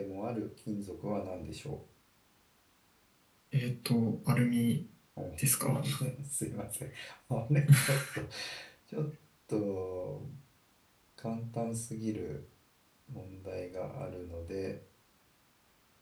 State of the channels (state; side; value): identical; both; correlation 1.00